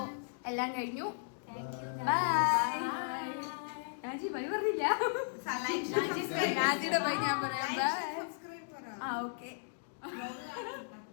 എല്ലാം കഴിഞ്ഞു. രാജി ബൈ പറഞ്ഞില്ല. രാജിയുടെ ബൈ ഞാൻ പറയാം. ഓക്കെ.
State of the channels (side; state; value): right; silent; digital silence